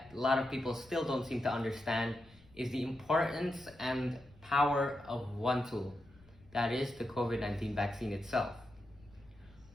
a lot of people still don't seem to understand is the importance and power of one tool, that is the COVID-19 vaccine itself.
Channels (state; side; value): noise; left; rumble, 25 dB below the sound